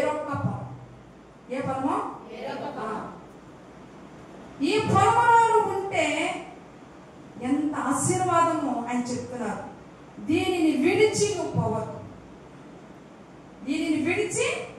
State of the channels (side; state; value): both; identical; correlation 1.00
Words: పొలం. ఏ పొలమో? ఈ పొలంలో ఉంటే ఎంత ఆశీర్వాదమో ఆయన చెప్తున్నారు. దీనిని విడిచి నువ్వు పోవద్దు. దీనిని విడిచి